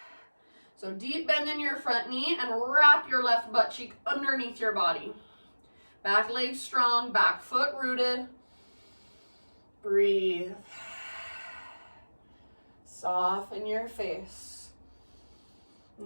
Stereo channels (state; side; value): inverted; both; correlation -1.00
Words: So deep bend in your front knee and wrap your left butt cheek underneath your body. Back leg strong, back foot rooted. Breathe. Soften your face.